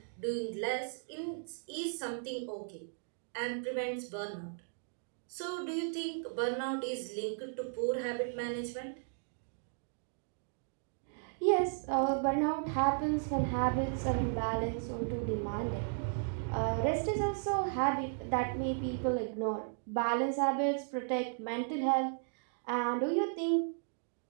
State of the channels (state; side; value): silent; left; digital silence